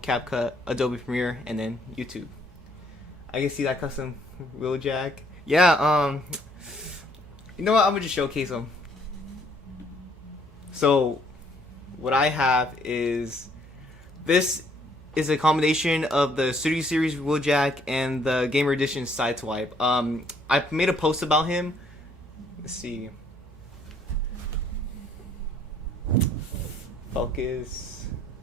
Adobe Premiere, and then YouTube. I can see that custom Wheeljack. Yeah, you know what? I'm gonna just showcase them. So, what I have is, this is a combination of the Studio Series Wheeljack and the Gamer Edition Sideswipe. I made a post about him. Let's see. Focus.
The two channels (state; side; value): normal; both; correlation 0.65